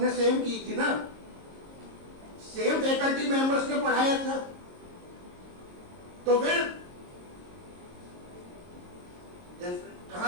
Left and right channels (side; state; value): left; late; 22 ms